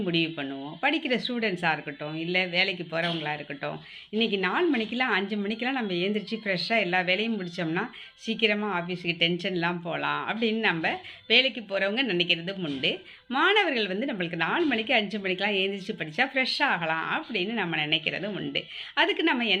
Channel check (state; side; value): identical; both; correlation 1.00